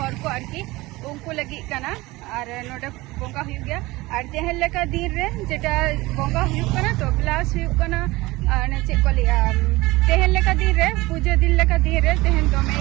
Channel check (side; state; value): left; quieter; 20.7 dB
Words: को आरकी उनको लगी कना और नोडे बोंगा हुई गया और तेहन लेका दिन रे जेटा बोंगा हुई कना तो प्लस हुई कना ने चे को लिया तेहन लेका दिन रे पूजा दिन लेका दिन रे तेहन दोमे